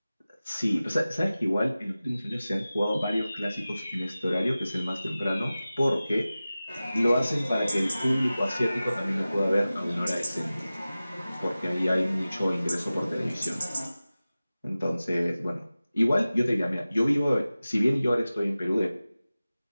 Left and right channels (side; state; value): both; inverted; correlation -0.96